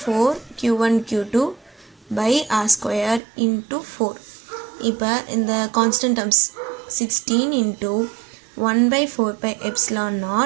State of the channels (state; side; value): drops out; left; at 3.2 s